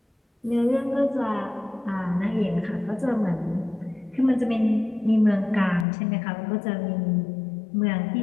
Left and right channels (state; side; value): drops out; right; at 5.9 s